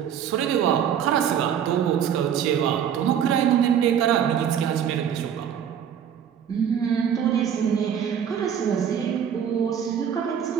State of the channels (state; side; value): quieter; left; 8.7 dB